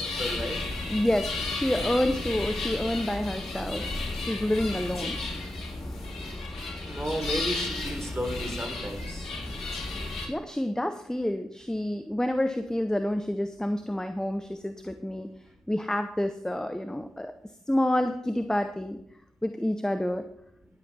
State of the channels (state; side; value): normal; both; correlation 0.93